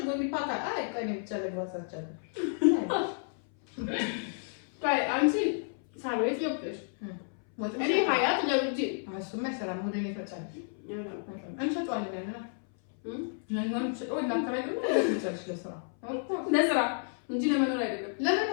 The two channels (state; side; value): silent; right; 57 dB below the other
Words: ሊፓካ አይ ቀኔ ብቻ ለግባሳቸው ታይ አንቺ ሳቤት ይወጥሽ እኔ ሀያት ለውጂ እሱማ አይሰራም። ወደ እኔ ትመጫለሽ እንሸጠዋለን ያለና ለምን ሸጠው እናከራዩ ለስራ እንጂ ለመኖር አይደለም።